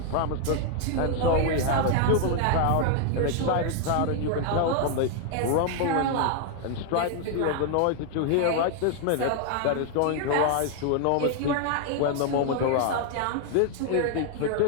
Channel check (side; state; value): both; different; correlation 0.00